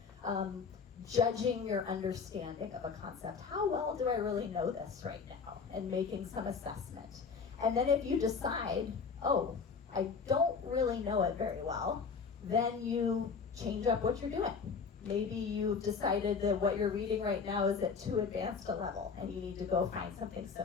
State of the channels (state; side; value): quieter; right; 5.4 dB